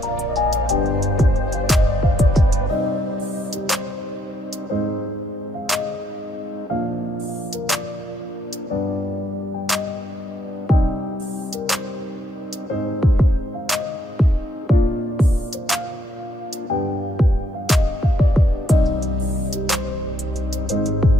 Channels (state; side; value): normal; both; correlation 0.71